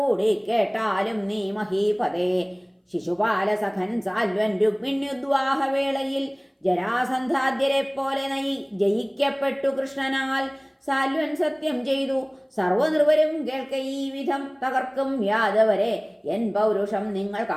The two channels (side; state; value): both; identical; correlation 1.00